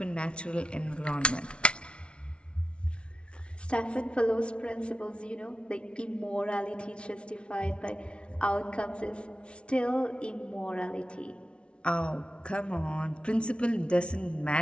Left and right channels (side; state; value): right; late; 0.058 ms